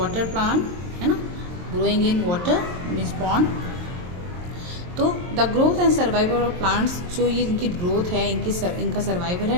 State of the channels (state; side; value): late; left; 23 ms